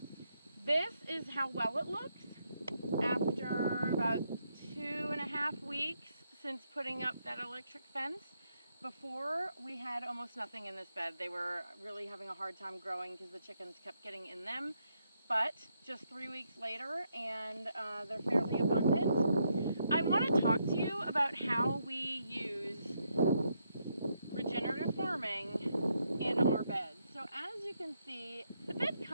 This is how well it looks after about 2.5 weeks since putting up that electric fence. Before, we had almost nothing in this bed. They were really having a hard time growing because the chickens kept getting in them. But just 3 weeks later, and they're fairly abundant. I want to talk to you about how we use regenerative farming in our beds. So as you can see, the bed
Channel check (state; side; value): inverted; both; correlation -0.78